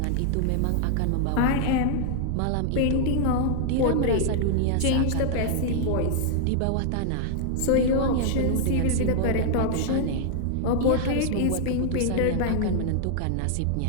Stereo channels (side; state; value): both; different; correlation -0.01